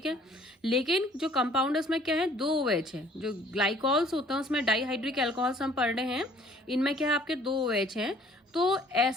है। लेकिन जो कंपाउंड है उसमें क्या है, 2 OH है। जो ग्लाइकॉल्स होते हैं उसमें डाईहाइड्रिक अल्कोहल्स हम पढ़ रहे हैं, इनमें क्या है आपके 2 OH हैं। तो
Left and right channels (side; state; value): both; normal; correlation 0.56